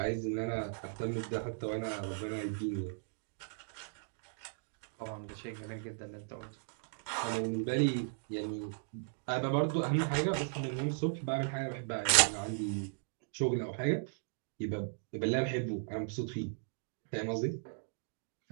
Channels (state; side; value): silent; left; digital silence